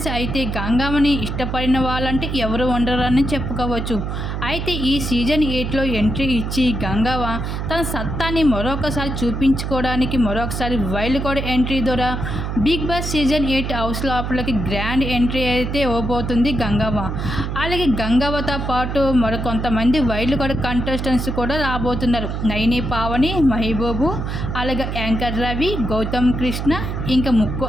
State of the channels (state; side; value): noise; right; hum, 3 dB below the sound